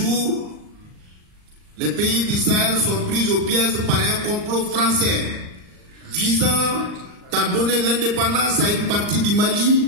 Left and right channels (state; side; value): late; left; 39 ms